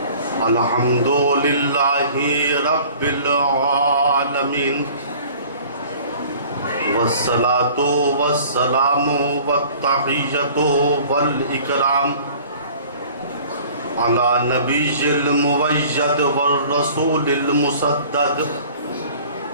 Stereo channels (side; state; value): both; inverted; correlation -0.49